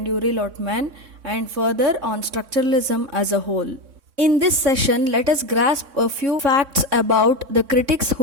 Yuri Lotman, and further on structuralism as a whole. In this session, let us grasp a few facts about the critics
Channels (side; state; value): left; late; 3.6 ms